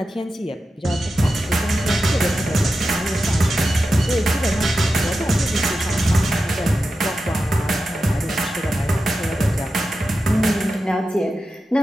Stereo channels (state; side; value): normal; both; correlation 0.91